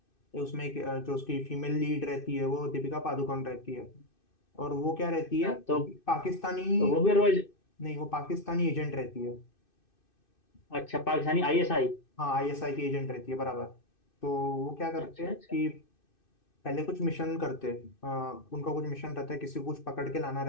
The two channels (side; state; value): right; late; 2.6 ms